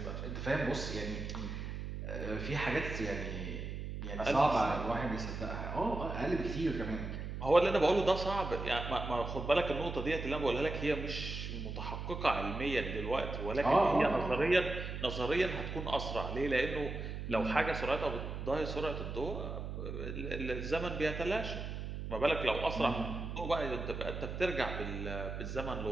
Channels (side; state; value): right; noise; hum, 6 dB below the sound